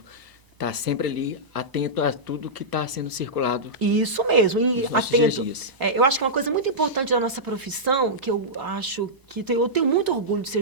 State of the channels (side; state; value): left; late; 1.0 ms